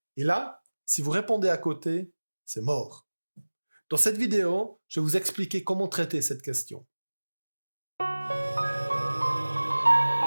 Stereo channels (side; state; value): both; inverted; correlation -1.00